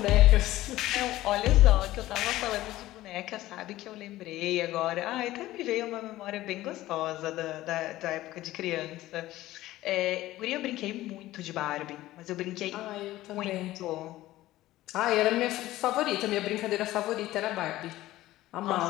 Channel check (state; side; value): quieter; right; 16.0 dB